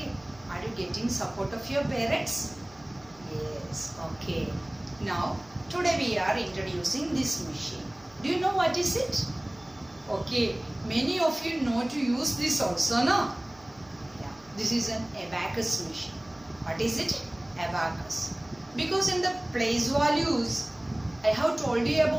are you getting support of your parents? Yes. Okay, now today we are introducing this machine. Do you know what is it? Okay, many of you know to use this also, no? Yeah, this is an abacus machine. What is it? Abacus. Because in the place values, I have told you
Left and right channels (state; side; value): noise; right; hum, 27 dB below the sound